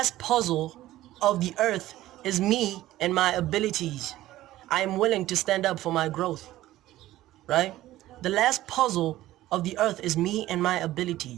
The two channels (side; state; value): left; quieter; 15.2 dB